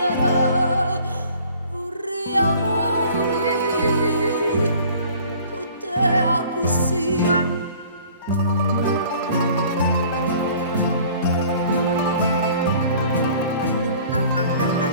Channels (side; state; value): both; inverted; correlation -0.51